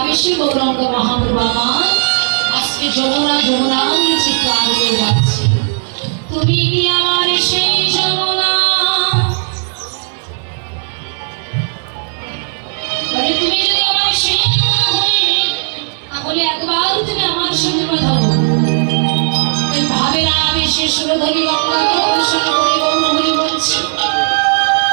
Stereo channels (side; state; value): left; silent; digital silence